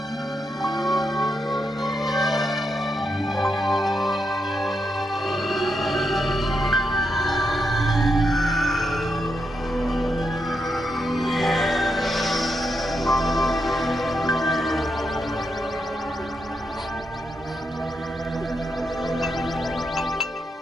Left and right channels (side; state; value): both; normal; correlation 0.83